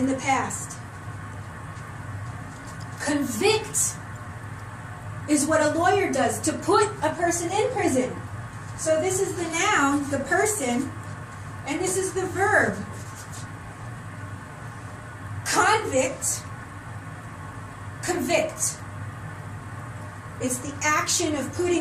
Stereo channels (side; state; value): both; identical; correlation 1.00